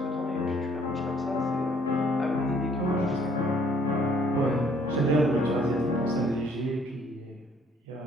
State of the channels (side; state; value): both; normal; correlation 0.62